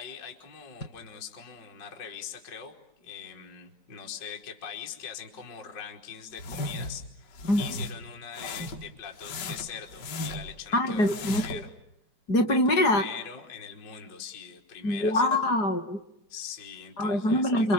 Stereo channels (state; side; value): late; right; 4.9 ms